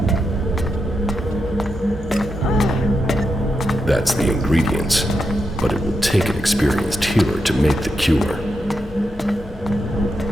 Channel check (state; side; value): normal; both; correlation 0.85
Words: That's the ingredients, but it will take an experienced healer to make the cure.